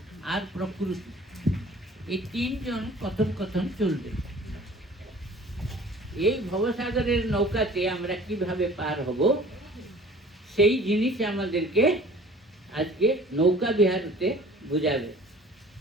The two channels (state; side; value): normal; both; correlation 0.48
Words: আর প্রকৃতি, এই 3 জন কথন কথন চলবে। এই ভবসাগরের নৌকাতে আমরা কিভাবে পার হব, সেই জিনিস আমাদেরকে আজকে নৌকা বিহারতে বুঝাবে।